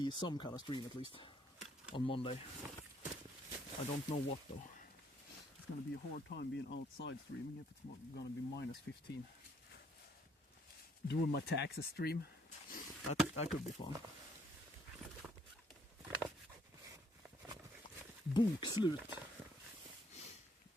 some kind of stream at least on Monday. I don't know what though. It's gonna be a hard time being outside streaming if it's gonna be minus 15. Doing my taxes stream. That could be fun. Bokslut.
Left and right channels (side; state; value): both; normal; correlation 0.67